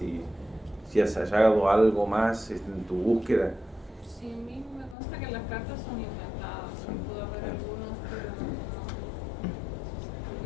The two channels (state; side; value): drops out; right; at 5.0 s